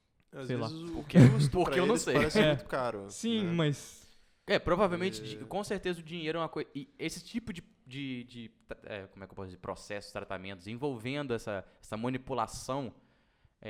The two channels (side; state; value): both; identical; correlation 1.00